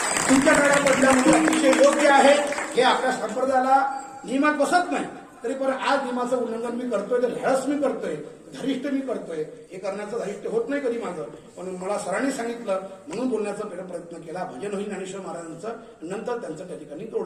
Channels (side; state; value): both; identical; correlation 1.00